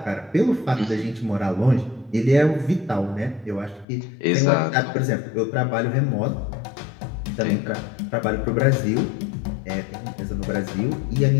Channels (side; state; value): right; drops out; at 3.9 s